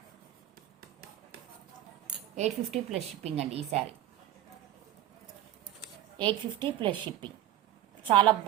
$850 ప్లస్ షిప్పింగ్ అండి. ఈ శారీ $850 ప్లస్ షిప్పింగ్. చాలా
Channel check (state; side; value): quieter; left; 12.7 dB